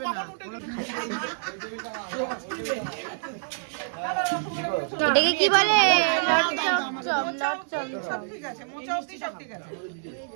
এটাকে কি বলে? লট চমচম।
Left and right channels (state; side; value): silent; left; digital silence